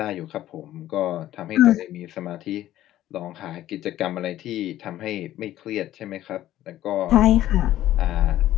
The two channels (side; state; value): right; quieter; 13.5 dB